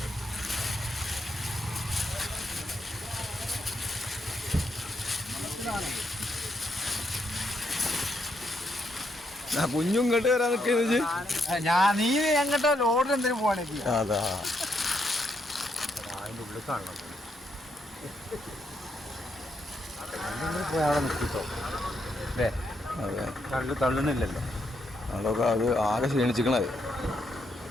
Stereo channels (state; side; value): normal; both; correlation 0.78